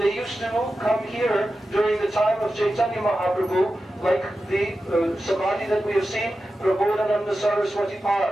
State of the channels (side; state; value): both; normal; correlation 0.92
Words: used to come here during the time of Chaitanya Mahaprabhu, like the Samadhi that we have seen, Prabodhananda Saraswati